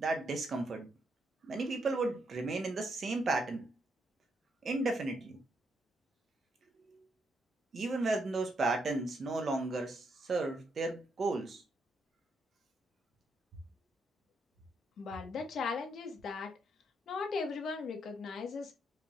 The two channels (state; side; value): normal; both; correlation 0.77